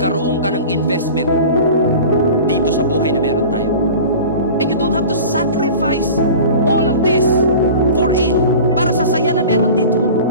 ka ng investment dito sa buhay na meron tayo. And you don't have to sacrifice all of this for it, para sa saya na meron dito.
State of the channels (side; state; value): both; inverted; correlation -0.38